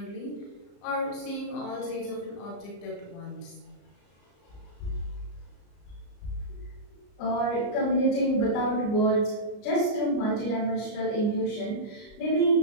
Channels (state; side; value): late; right; 34 ms